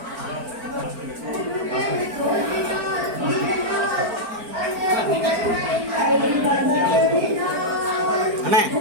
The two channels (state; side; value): late; left; 4.4 ms